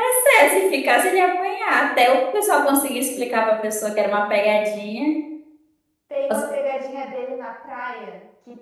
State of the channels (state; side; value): identical; both; correlation 1.00